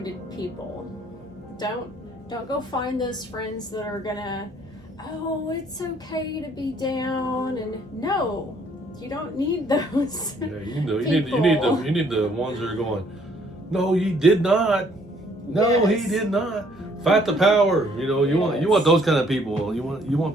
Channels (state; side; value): normal; both; correlation 0.63